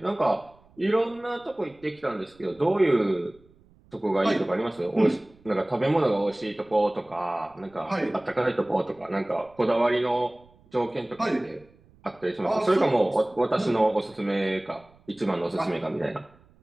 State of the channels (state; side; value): noise; right; rumble, 29 dB below the sound